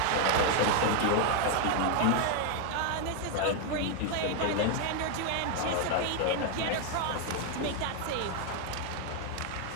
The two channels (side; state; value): both; different; correlation 0.00